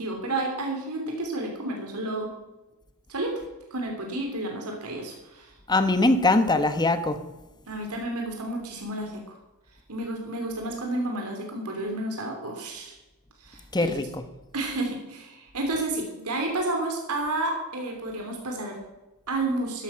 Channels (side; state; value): both; normal; correlation 0.35